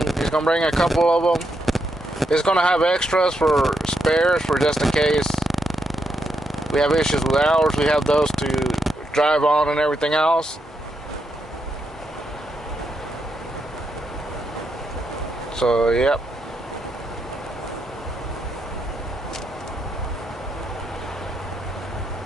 he's going to bring a couple of them. He's going to have extras for spares, for just in case we have issues with ours. We have those to drive on and everything else. So, yep.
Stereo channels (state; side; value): normal; both; correlation 0.81